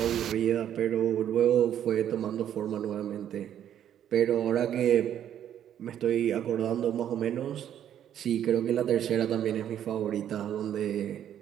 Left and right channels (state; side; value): quieter; left; 10.2 dB